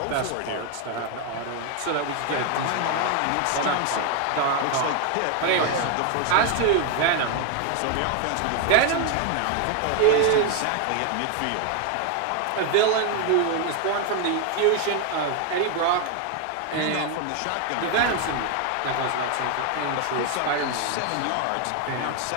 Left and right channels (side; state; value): both; different; correlation 0.01